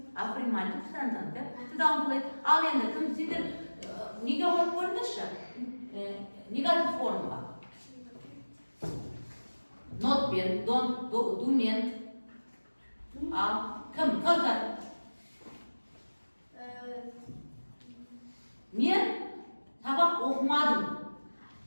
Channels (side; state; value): both; inverted; correlation -1.00